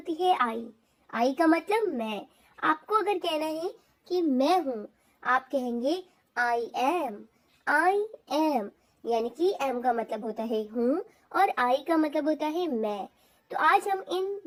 है आई का मतलब मैं। आपको अगर कहना है कि मैं हूँ, आप कहेंगे आई एम, यानी कि एम का मतलब होता है हूँ और आई का मतलब होता है मैं। तो आज हम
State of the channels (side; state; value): both; identical; correlation 1.00